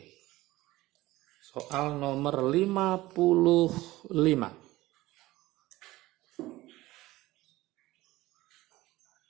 Soal nomor 55.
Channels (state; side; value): quieter; left; 17.9 dB